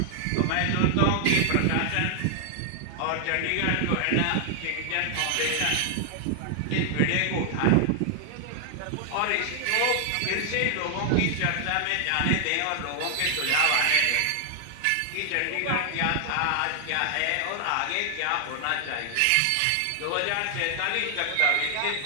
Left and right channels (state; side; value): different; both; correlation 0.00